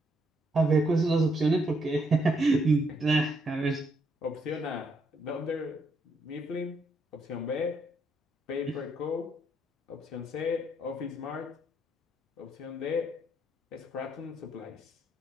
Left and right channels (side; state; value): both; normal; correlation 0.74